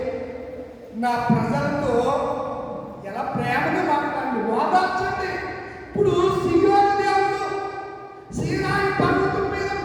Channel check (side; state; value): both; identical; correlation 1.00